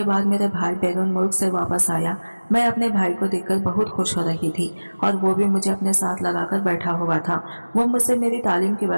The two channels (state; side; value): inverted; both; correlation -1.00